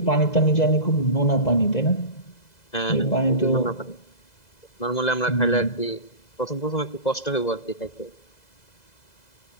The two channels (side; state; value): right; late; 2.0 ms